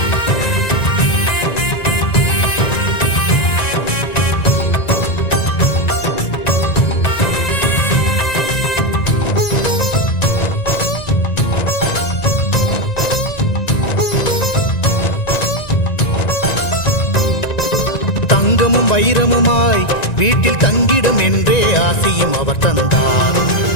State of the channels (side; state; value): right; late; 1.9 ms